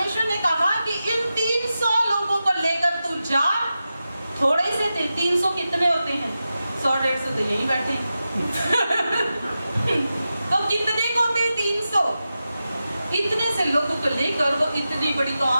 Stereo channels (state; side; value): inverted; both; correlation -0.92